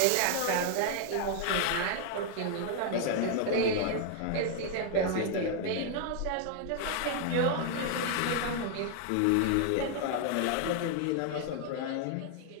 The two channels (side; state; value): both; different; correlation 0.00